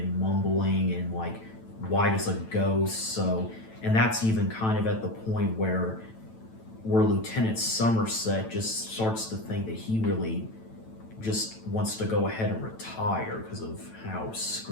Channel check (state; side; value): late; right; 9.0 ms